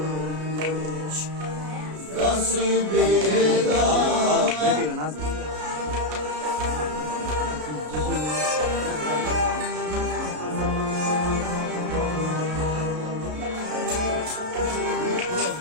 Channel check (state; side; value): late; left; 33 ms